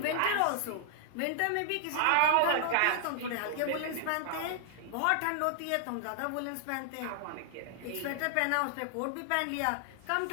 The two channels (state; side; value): different; both; correlation -0.01